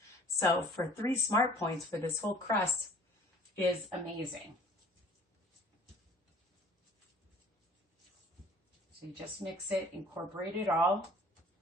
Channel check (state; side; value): normal; both; correlation 0.51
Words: So for 3 smart points for this whole crust is amazing. So you just mix it, incorporate it all,